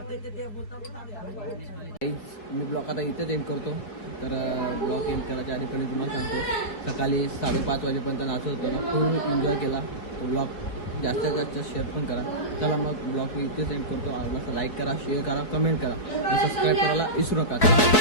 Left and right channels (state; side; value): late; right; 4.7 ms